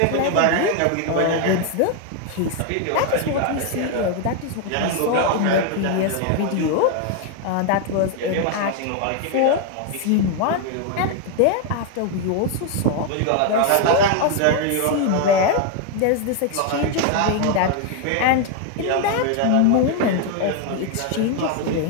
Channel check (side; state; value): both; different; correlation 0.01